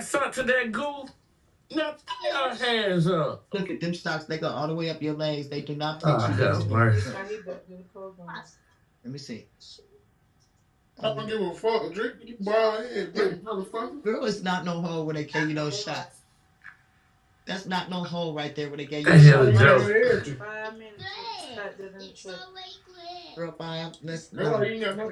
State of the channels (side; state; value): both; identical; correlation 1.00